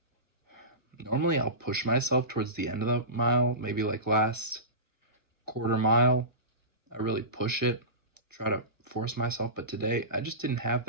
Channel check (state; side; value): late; left; 1.1 ms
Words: normally I'll push myself towards the end of the mile, maybe like last quarter mile. I really push it, try to force myself, but today I just didn't have